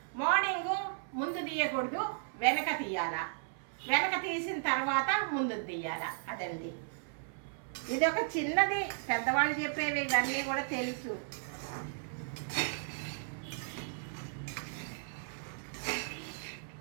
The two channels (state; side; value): silent; left; 54 dB below the other